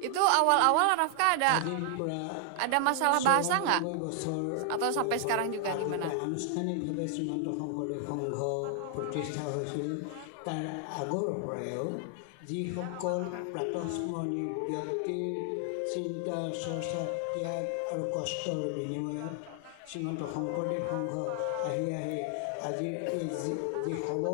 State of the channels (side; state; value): both; different; correlation 0.00